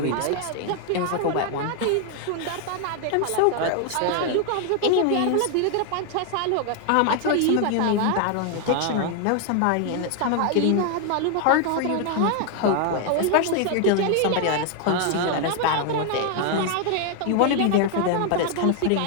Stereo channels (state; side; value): different; both; correlation 0.00